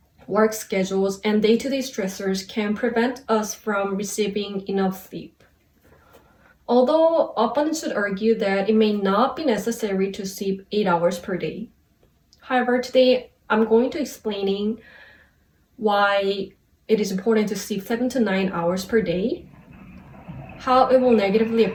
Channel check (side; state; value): both; identical; correlation 1.00